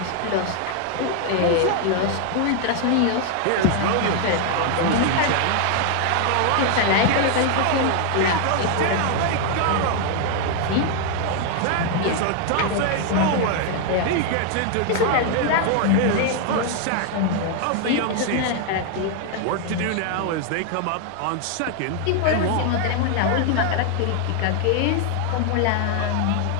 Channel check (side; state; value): both; different; correlation 0.00